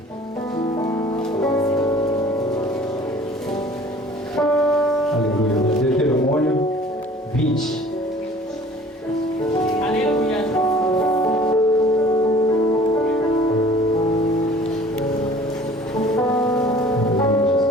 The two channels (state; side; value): normal; both; correlation 0.49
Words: Aleluia. Deuteronômio 20. Aleluia.